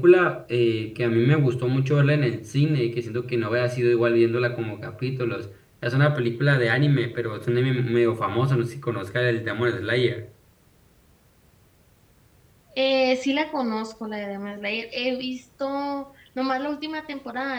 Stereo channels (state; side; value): identical; both; correlation 1.00